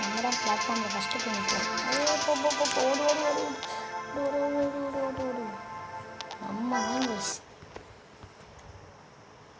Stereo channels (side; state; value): both; identical; correlation 1.00